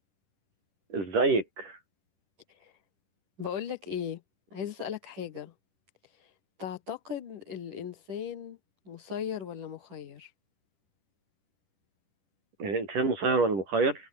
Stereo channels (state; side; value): late; left; 10 ms